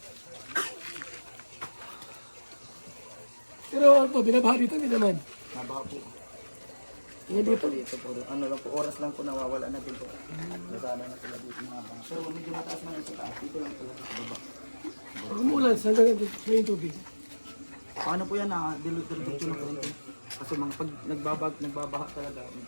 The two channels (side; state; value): both; inverted; correlation -1.00